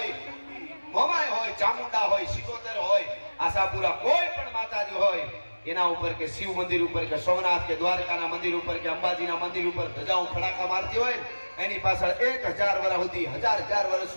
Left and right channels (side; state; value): both; inverted; correlation -1.00